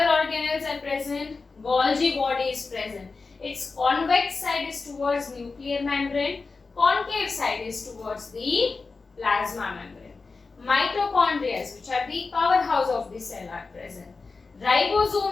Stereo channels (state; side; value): quieter; right; 4.2 dB